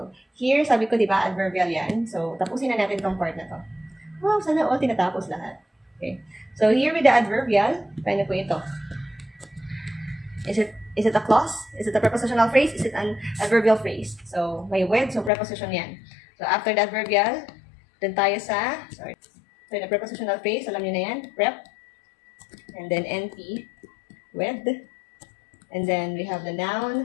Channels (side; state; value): right; drops out; at 15.3 s